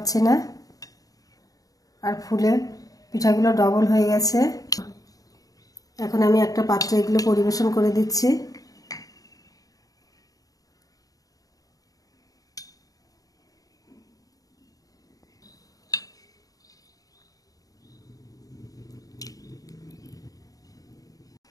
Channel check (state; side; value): late; right; 0.17 ms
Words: না। আর ফুলে পিঠাগুলো ডবল হয়ে গেছে। এখন আমি একটা পাত্রে এগুলো পরিবেশন করে দিচ্ছি।